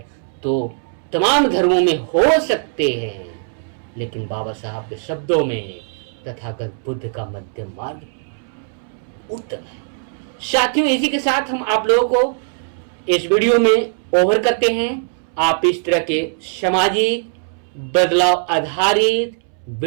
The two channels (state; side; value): silent; left; 66 dB below the other